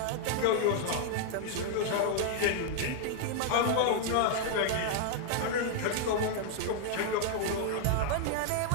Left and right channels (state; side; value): different; both; correlation 0.00